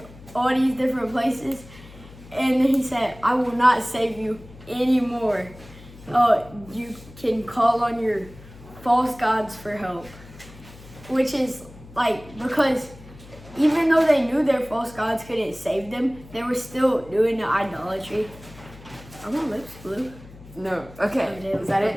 all these different places?" And he said, "I will not save you anymore. You can call on your false gods for help," which is because even though they knew their false gods couldn't save them, they were still doing the idolatry. Are my lips blue? No. Okay. Is that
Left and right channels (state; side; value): noise; left; hum, 19 dB below the sound